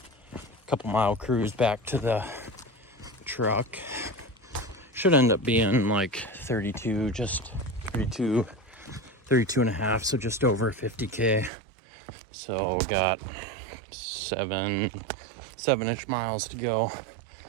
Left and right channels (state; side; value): drops out; left; at 11.5 s